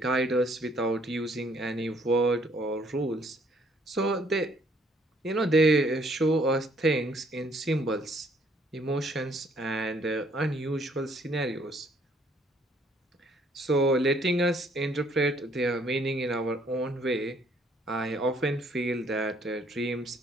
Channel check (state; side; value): normal; both; correlation 0.64